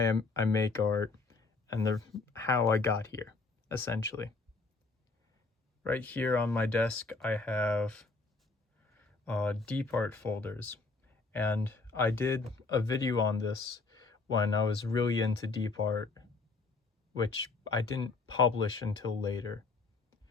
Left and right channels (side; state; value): right; quieter; 3.9 dB